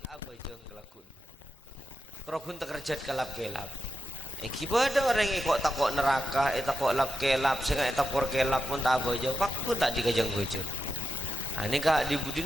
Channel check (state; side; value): normal; both; correlation 0.89